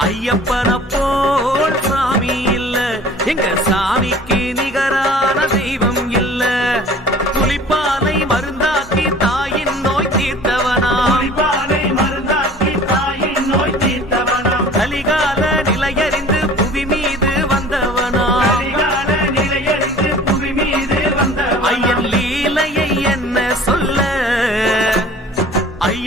ஐயப்பன போல் சாமி இல்ல, எங்க சாமிக்கு நிகரான தெய்வம் இல்ல. புலிப்பாலை மருந்தாக்கி தாயின் நோய் தீர்த்தவனா, புலிப்பாலை மருந்தாக்கி தாயின் நோய் தீர்த்தவனா, கலிகால நிலையறிந்து புவி மீது வந்தவனா, கலிகால நிலையறிந்து புவி மீது வந்தவனா, ஐயன் லீலையை என்ன சொல்ல.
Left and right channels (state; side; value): normal; both; correlation 0.47